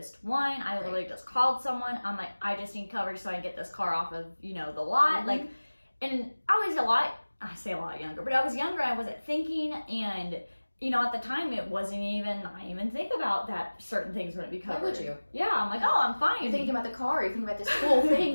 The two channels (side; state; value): both; inverted; correlation -1.00